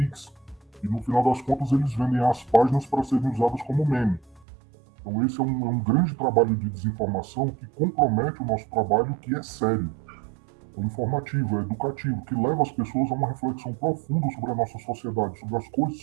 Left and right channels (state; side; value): drops out; left; at 4.5 s